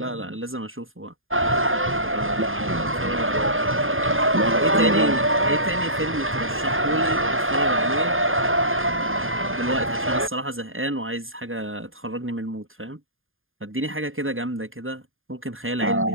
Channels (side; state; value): left; late; 0.59 ms